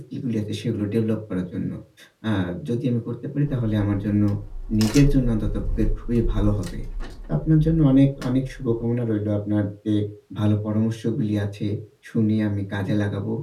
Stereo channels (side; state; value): both; identical; correlation 1.00